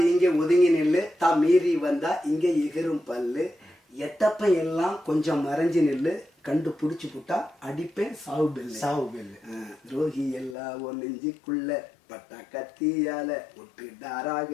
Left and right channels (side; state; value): right; drops out; at 10.6 s